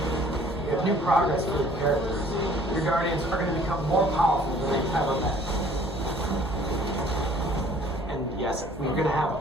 We have new progress for the characters. Your Guardians are going to become more powerful than they've ever been. And yes, we're going to have a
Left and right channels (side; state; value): both; normal; correlation 0.55